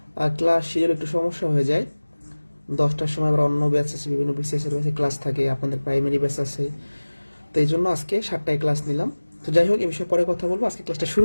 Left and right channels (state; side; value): inverted; both; correlation -1.00